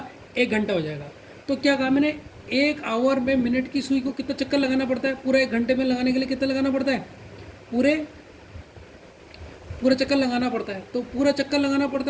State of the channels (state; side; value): identical; both; correlation 1.00